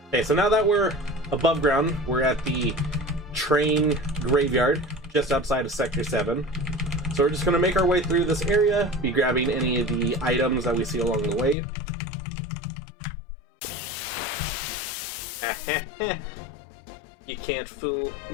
Okay, so now that we're above ground, we're at the train graveyard just outside of Sector 7. So we're just gonna make our way through this area, be grabbing any of the items that we see along the way. You can't fool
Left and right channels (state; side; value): drops out; right; at 11.6 s